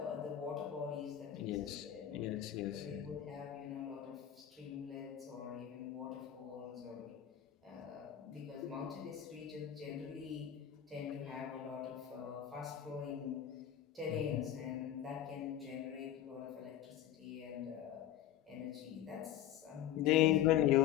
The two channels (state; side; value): quieter; right; 11.3 dB